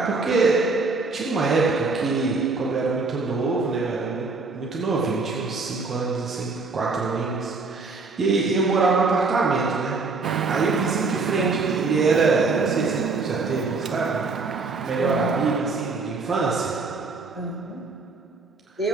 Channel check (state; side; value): quieter; left; 4.0 dB